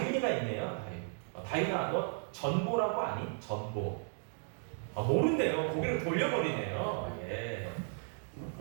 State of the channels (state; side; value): silent; left; 54 dB below the other